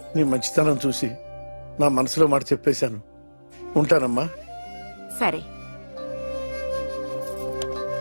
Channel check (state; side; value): inverted; both; correlation -1.00